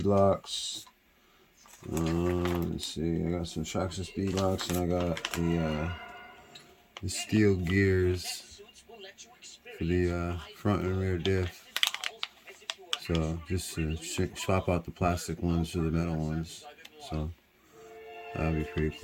Let's see. I got some traxxas beadlocks, and I got the steel gears for the front and rear diff. So just to swap out the plastic ones for the metal ones. So that'll be pretty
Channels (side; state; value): both; identical; correlation 1.00